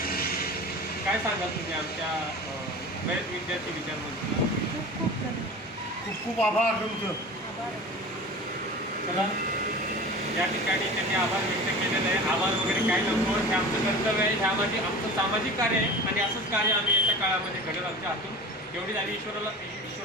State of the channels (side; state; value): both; normal; correlation 0.35